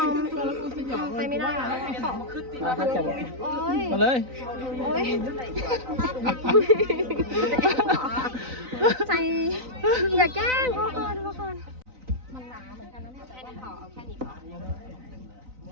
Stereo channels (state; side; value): late; left; 3.9 ms